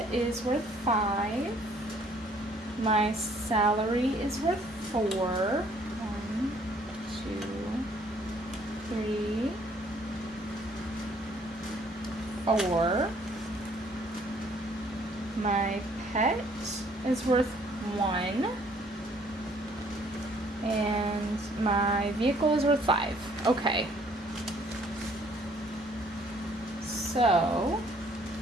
is worth 5. My salary is worth 4. 1, 2, 3, 4. My pet is worth 1. And my vehicle is worth 5. Okay. So,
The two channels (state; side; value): normal; both; correlation 0.61